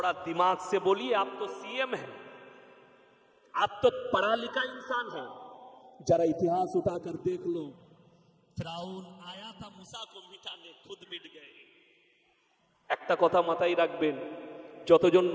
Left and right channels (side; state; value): both; identical; correlation 1.00